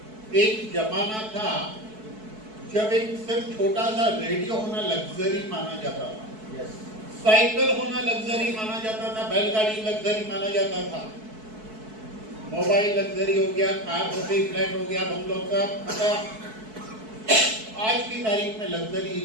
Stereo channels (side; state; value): left; late; 4.6 ms